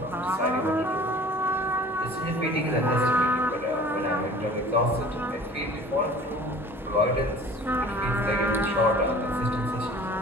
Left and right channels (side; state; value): both; normal; correlation 0.46